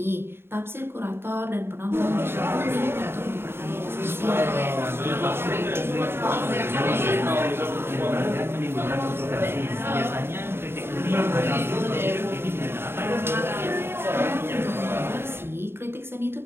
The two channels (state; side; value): late; left; 0.11 ms